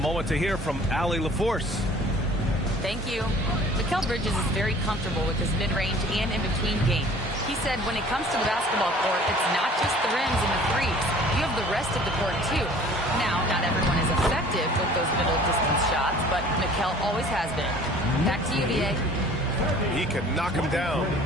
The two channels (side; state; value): both; normal; correlation 0.50